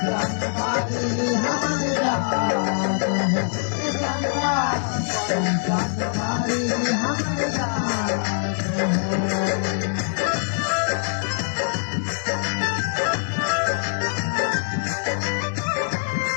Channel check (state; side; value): silent; right; 62 dB below the other